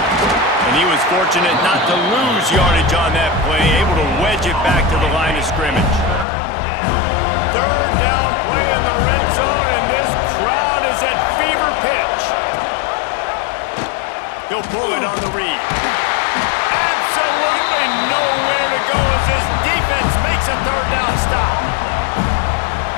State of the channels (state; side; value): drops out; right; at 6.2 s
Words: And he was fortunate not to lose yardage on that play, able to wedge it back to the line of scrimmage. 3rd down play in the red zone, and this crowd is at fever pitch. He'll pull it on the read. Absolutely nowhere to go as this defense makes a 3rd down stop.